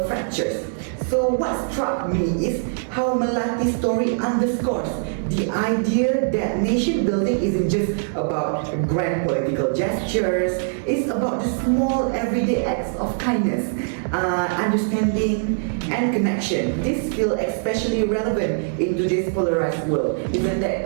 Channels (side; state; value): left; silent; digital silence